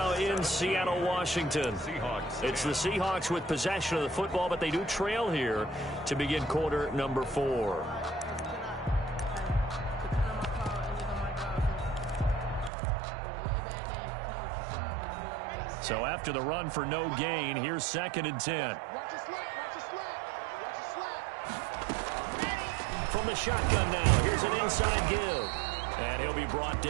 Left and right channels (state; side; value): drops out; left; at 12.7 s